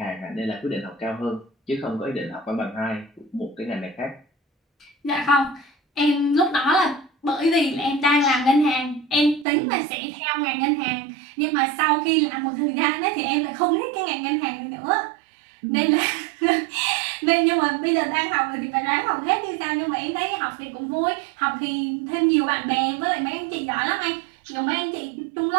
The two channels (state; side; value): drops out; left; at 9.5 s